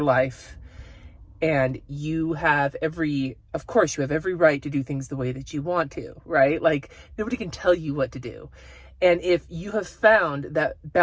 and you have every right to do things the way that you want to, right? Like, nobody can tell you what to do. And if you have found that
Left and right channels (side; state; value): both; identical; correlation 1.00